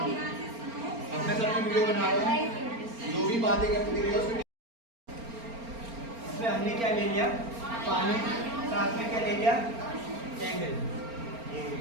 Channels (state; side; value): late; left; 4.3 ms